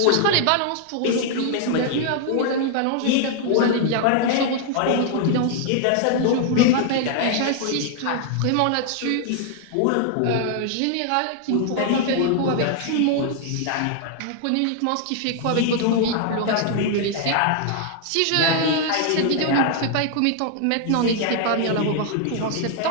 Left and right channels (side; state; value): both; different; correlation 0.00